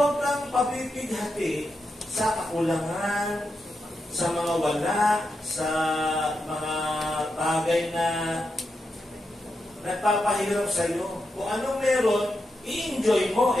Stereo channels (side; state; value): both; normal; correlation 0.86